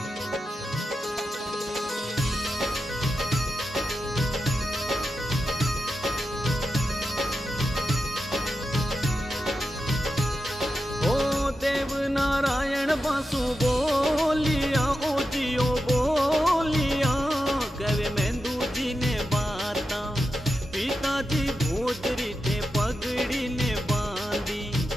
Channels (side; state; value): both; normal; correlation 0.90